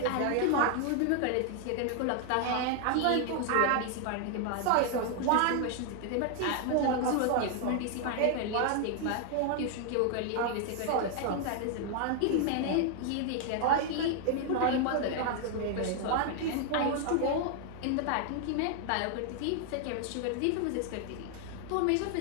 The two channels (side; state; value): both; different; correlation 0.00